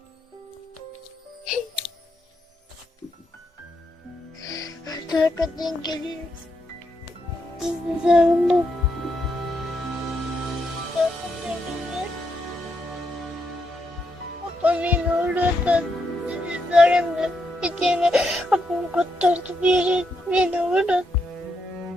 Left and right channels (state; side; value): normal; both; correlation 0.80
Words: Arkadan geliyoruz. Sizi sarıldım. Babam yine oradan sizi sarıldı. Bir tane babam kurtardı bir yere beni oradan.